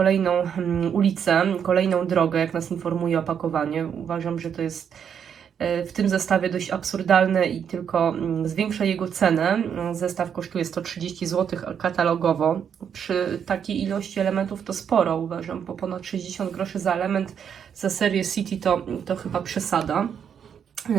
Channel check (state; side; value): quieter; left; 7.9 dB